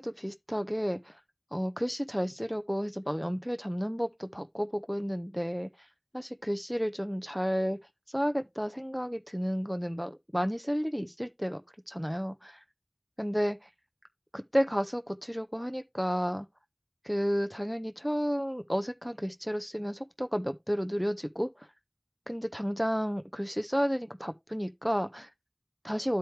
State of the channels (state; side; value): identical; both; correlation 1.00